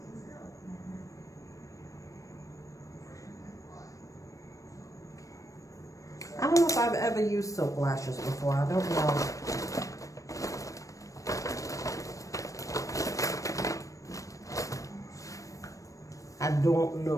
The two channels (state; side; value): late; right; 0.16 ms